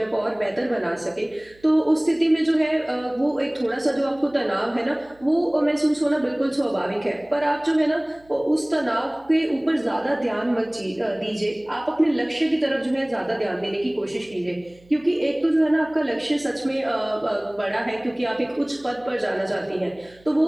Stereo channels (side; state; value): right; noise; hum, 28 dB below the sound